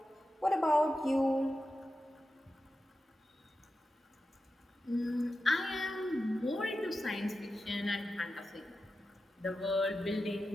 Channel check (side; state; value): both; normal; correlation 0.91